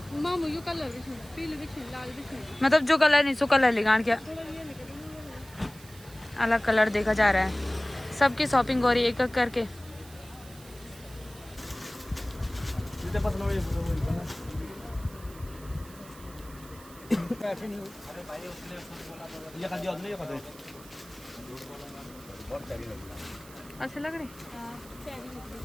कलर मतलब जो कलर नहीं सो कलर लिगान क्या अलग कलर देखा जा रहा है। सबकी शॉपिंग हो रही है एक एक करके। अच्छा लग रही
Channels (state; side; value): noise; right; hiss, 20 dB below the sound